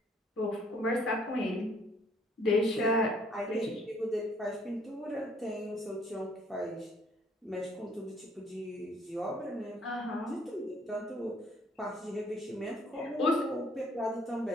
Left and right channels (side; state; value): both; normal; correlation 0.62